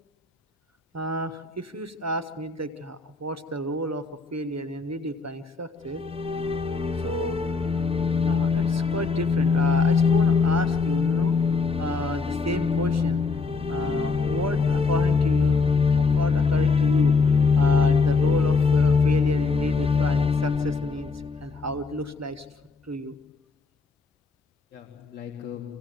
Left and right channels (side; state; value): right; quieter; 4.3 dB